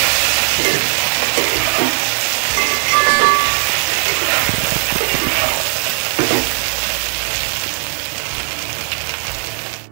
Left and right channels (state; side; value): silent; left; 61 dB below the other